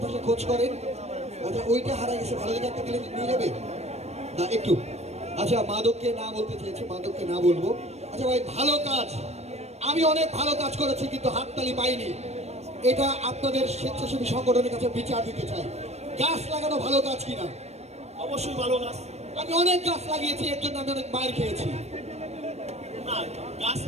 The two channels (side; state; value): left; late; 0.31 ms